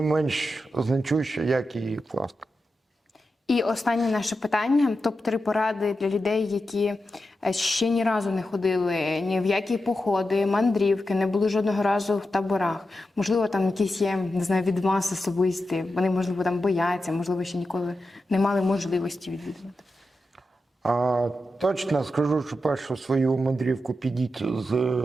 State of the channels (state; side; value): normal; both; correlation 0.90